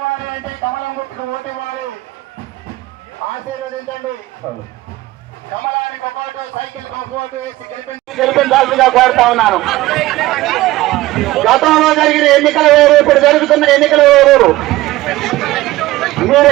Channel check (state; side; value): quieter; left; 17.6 dB